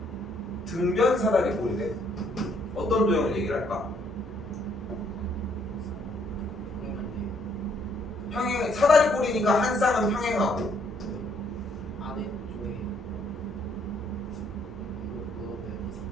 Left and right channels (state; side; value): normal; both; correlation 0.68